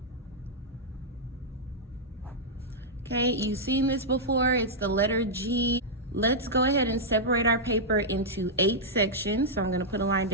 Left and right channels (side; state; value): both; normal; correlation -0.07